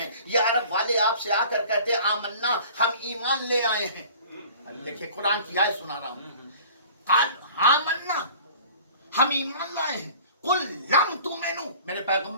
یہ عرب والے آپ سے آ کر کہتے ہیں آمنا، ہم ایمان لے آئے ہیں. دیکھیے قرآن کی آیت سنا رہا ہوں. قال آمنا، ہم ایمان لائے ہیں. قل لم تؤمنوا، میرے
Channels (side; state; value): both; inverted; correlation -0.46